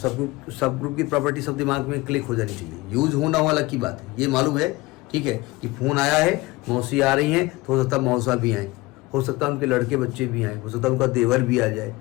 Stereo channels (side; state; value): right; quieter; 21.0 dB